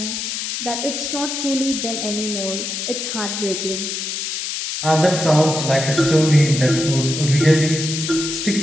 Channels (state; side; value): noise; left; hiss, 4 dB below the sound